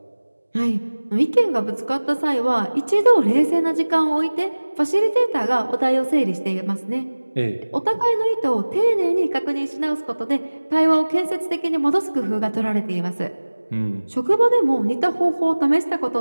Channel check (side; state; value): both; inverted; correlation -1.00